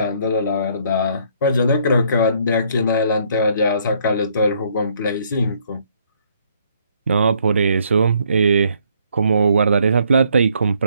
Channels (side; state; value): both; inverted; correlation -0.67